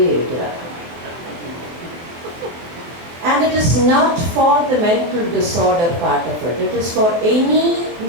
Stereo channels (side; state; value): left; late; 23 ms